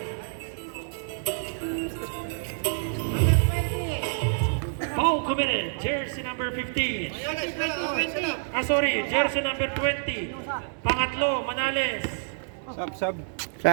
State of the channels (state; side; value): silent; left; digital silence